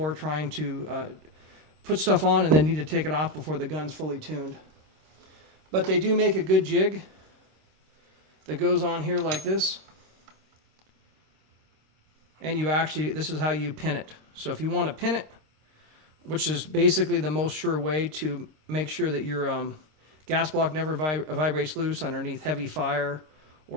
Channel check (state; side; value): late; left; 26 ms